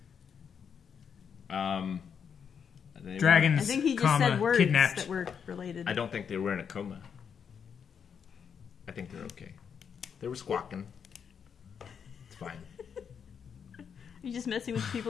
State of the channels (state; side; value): quieter; right; 7.1 dB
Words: Dragons, I think he just comma, said words kidnapped. that were related. I don't think they were in a coma. I think they're okay. They were squawking. It's fine. You're just messing with